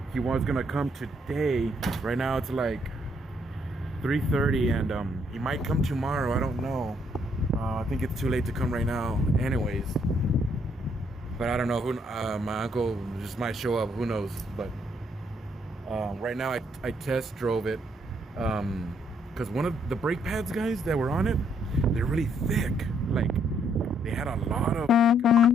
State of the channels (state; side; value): normal; both; correlation 0.70